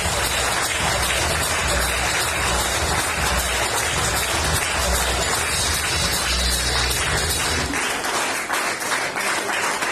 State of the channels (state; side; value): identical; both; correlation 1.00